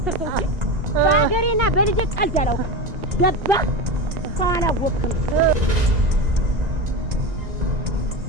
እንጂ በሀገሬና በልጄ ቀልድ አላውቅም። ገባህ? ሰው አላወቅም።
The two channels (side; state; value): left; late; 2.0 ms